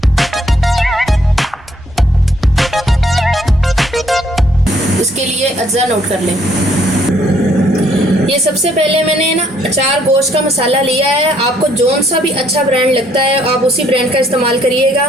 इसके लिए अज्जा नोट कर लें। ये सबसे पहले मैंने ना अचार गोश्त का मसाला लिया है। आपको जौन सा भी अच्छा ब्रांड लगता है आप उसी ब्रांड का इस्तेमाल करिएगा।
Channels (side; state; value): both; normal; correlation 0.67